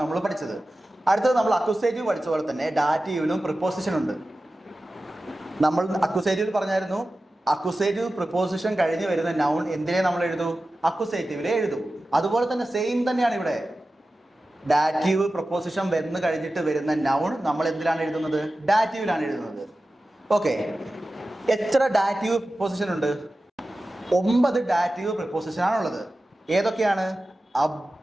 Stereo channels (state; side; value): normal; both; correlation 0.94